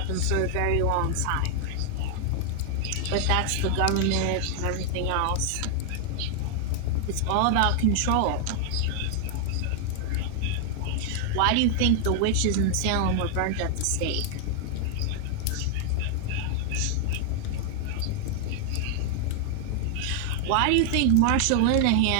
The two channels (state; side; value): different; both; correlation 0.00